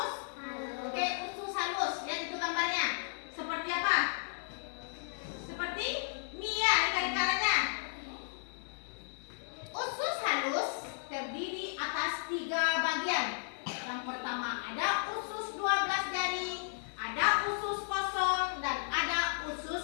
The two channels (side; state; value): right; silent; digital silence